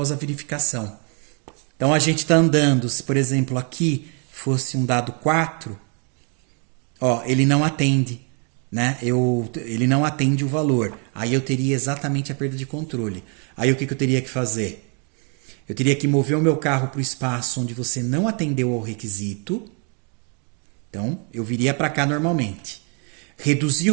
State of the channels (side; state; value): left; quieter; 37.1 dB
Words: a verificação. Então, a gente está andando, se por exemplo aqui fosse um dado 4, ó, ele não atende, né? Ele não atende o valor. Aí eu teria exatamente a perda de controle. Aí o que eu teria que fazer? Eu teria que mover o meu carro para o espaço onde você não atendeu ao requisito. Então, eu viria para cá normalmente. Reduzir